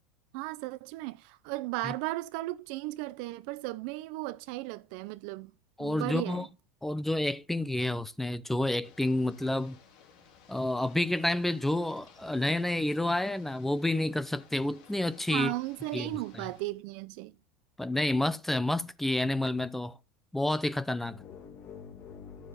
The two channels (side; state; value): both; normal; correlation 0.82